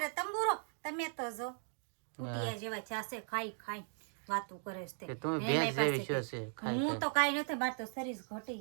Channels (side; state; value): left; silent; 52 dB below the other